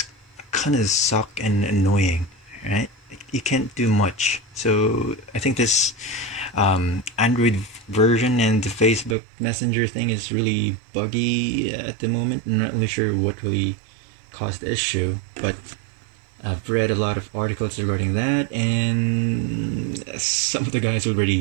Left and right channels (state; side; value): drops out; left; at 9.2 s